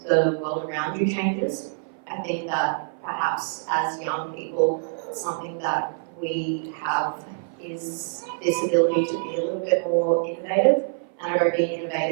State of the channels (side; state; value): left; silent; 55 dB below the other